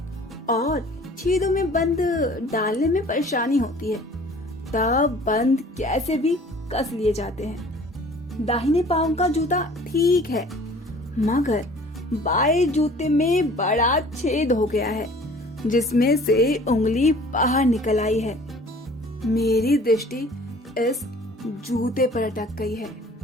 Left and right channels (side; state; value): both; normal; correlation 0.49